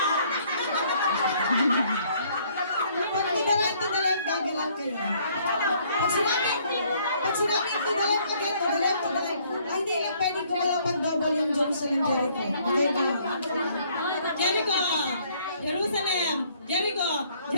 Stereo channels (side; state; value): both; inverted; correlation -0.63